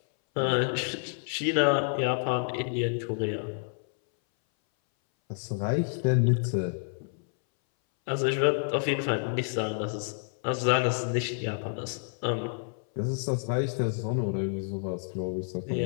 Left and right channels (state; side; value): silent; right; 59 dB below the other